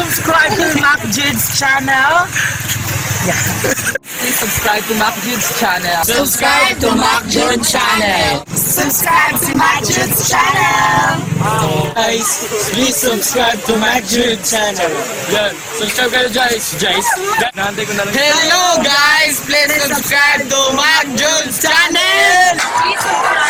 to Mac Jude's channel. Please subscribe to Mac Jude's channel. Subscribe to Mac Jude channel. Subscribe to my Jude's channel! Guys, please subscribe to Mac Jude channel. Yan, subscribe kayo guys. Nahantay ko na lang. Hello guys, please subscribe to Mac Jude channel.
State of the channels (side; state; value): both; identical; correlation 1.00